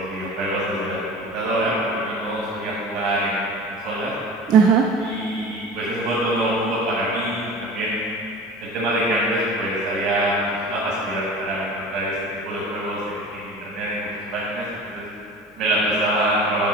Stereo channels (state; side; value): normal; both; correlation 0.38